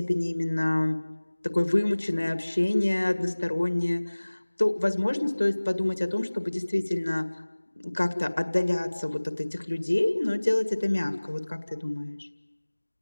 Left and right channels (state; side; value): inverted; both; correlation -1.00